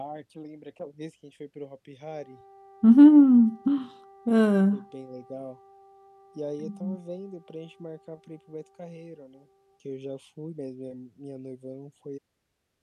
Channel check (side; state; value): both; identical; correlation 1.00